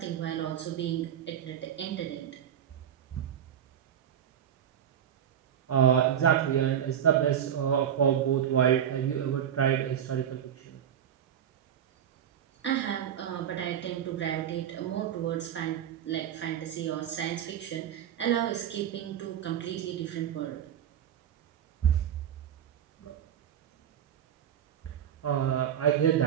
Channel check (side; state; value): left; quieter; 9.5 dB